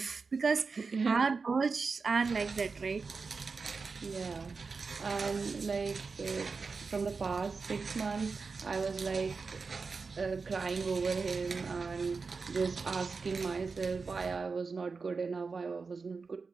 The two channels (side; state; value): left; quieter; 4.6 dB